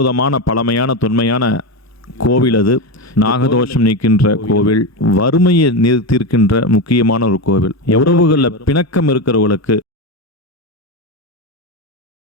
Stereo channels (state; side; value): normal; both; correlation 0.15